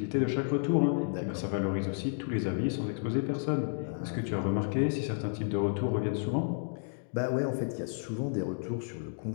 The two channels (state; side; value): silent; right; digital silence